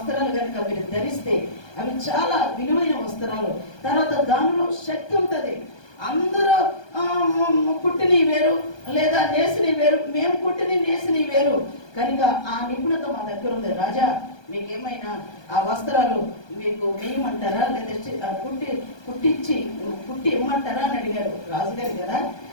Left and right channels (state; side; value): late; right; 1.2 ms